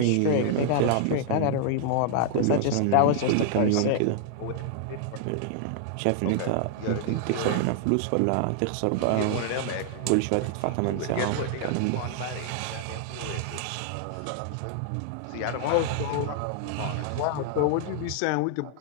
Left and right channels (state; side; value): different; both; correlation 0.00